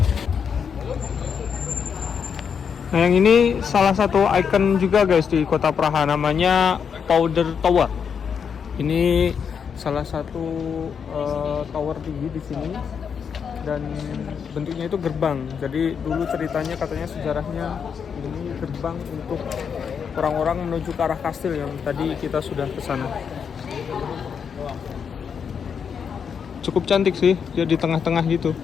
Nah yang ini salah satu ikon juga guys di kota Praha, namanya Powder Tower. Ini salah satu tower tinggi di sini dan bentuknya itu gerbang. Jadi dulu ceritanya katanya sejarahnya ini gerbang untuk orang-orang menuju ke arah kastil yang tadi kita sudah ke sana. Cukup cantik sih, dia di tengah-tengah gitu.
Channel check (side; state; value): right; quieter; 6.9 dB